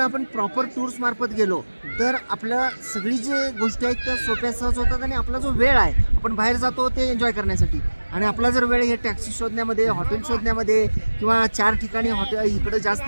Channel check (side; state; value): both; inverted; correlation -1.00